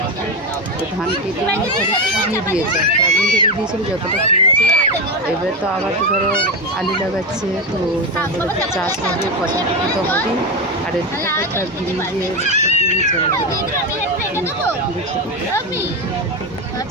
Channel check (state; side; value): normal; both; correlation 0.14